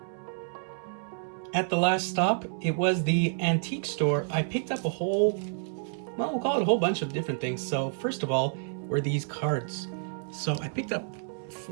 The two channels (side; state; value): left; silent; 58 dB below the other